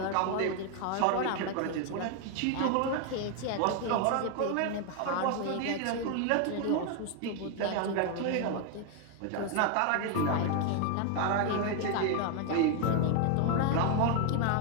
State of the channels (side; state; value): both; different; correlation 0.01